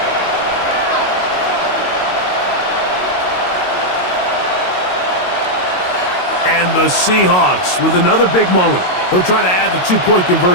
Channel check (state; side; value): late; right; 22 ms